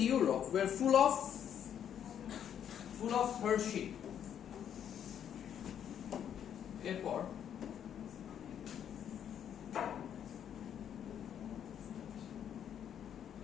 Europe were full of hardship. Airport.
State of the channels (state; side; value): quieter; right; 9.2 dB